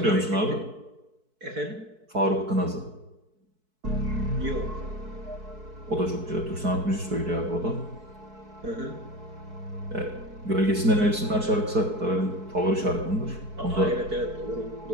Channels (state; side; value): late; left; 4.6 ms